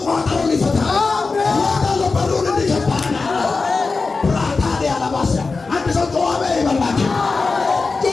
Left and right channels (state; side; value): quieter; right; 4.1 dB